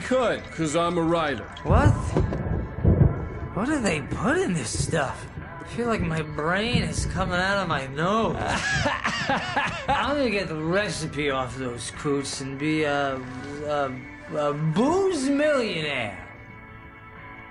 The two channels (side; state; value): both; identical; correlation 1.00